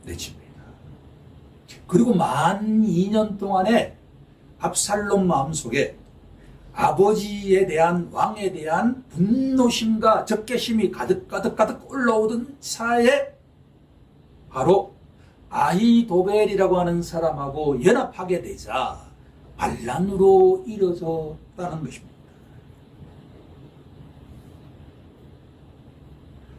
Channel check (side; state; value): both; identical; correlation 1.00